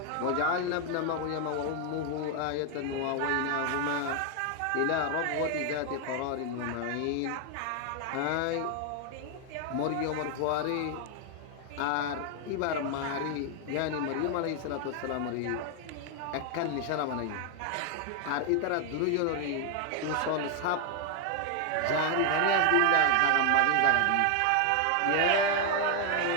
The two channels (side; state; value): both; different; correlation 0.00